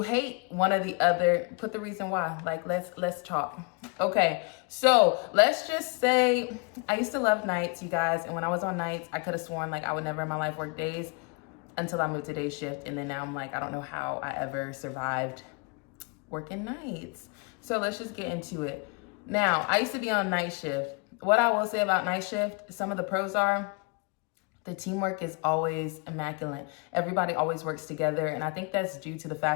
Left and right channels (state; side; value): quieter; right; 30.9 dB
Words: hate one or the other, put the reason why. Like, let's talk. Okay, so let's just say I used to love nights, you guys. And when I was on nights, I could have sworn like I would never in my life work days until I moved to day shift. And then now I'm like, I don't know how I ever survived working nights. So let's just get into it. Now, I used to be on night shift. What I will say about night shift, some of the pros are the teamwork is always immaculate. Everybody always works together. And I think that's due to the